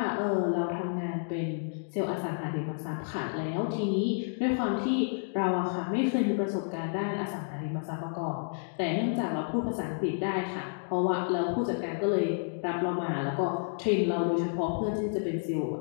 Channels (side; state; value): right; silent; digital silence